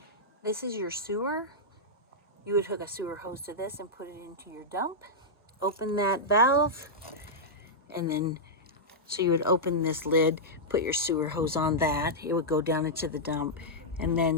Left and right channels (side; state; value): both; normal; correlation -0.08